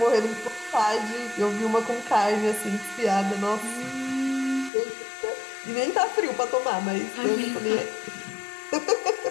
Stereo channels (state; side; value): drops out; right; at 4.7 s